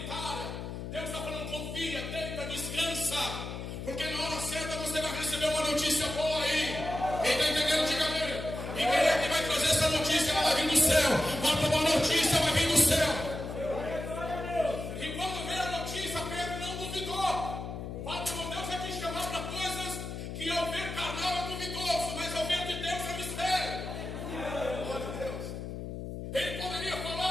Deus está falando, confia, deita, descansa. Porque na hora certa você vai receber uma notícia boa aí. Quem está entendendo, diga amém. E quem é que vai trazer essa notícia? Ela vai vir do céu. Uma notícia vai vir do céu. Que ao ver carnal é duvidoso, mas ao ver de Deus é mistério. Glória a Deus. Ele poderia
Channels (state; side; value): noise; left; hum, 7 dB below the sound